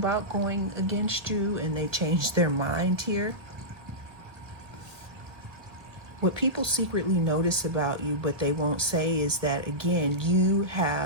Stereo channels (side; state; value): left; late; 1.4 ms